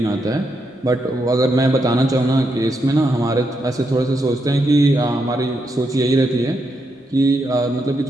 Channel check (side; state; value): both; normal; correlation 0.81